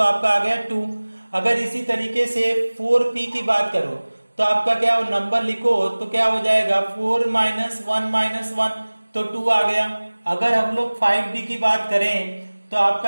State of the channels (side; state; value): both; inverted; correlation -1.00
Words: आपका आ गया 2। अगर इसी तरीके से 4p की बात करो तो आपका क्या नंबर लिखो तो क्या हो जाएगा 4 माइनस 1 माइनस 1, तो 2 आ गया। अगर हम लोग 5d की बात करें तो